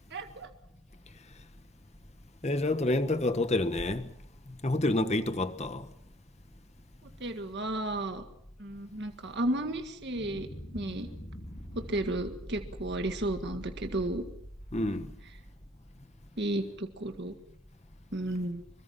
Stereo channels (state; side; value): normal; both; correlation 0.58